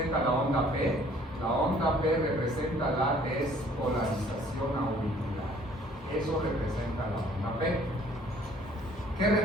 la onda P? La onda P representa la despolarización auricular. Eso representa la onda P. ¿Qué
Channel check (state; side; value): normal; both; correlation 0.57